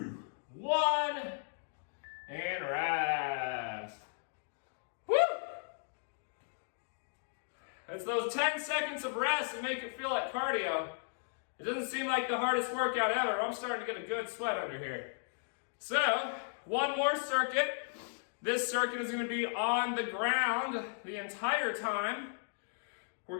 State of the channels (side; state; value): right; silent; digital silence